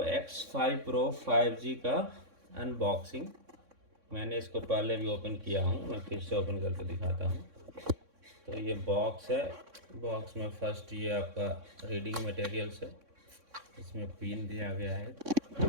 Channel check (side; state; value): left; late; 3.6 ms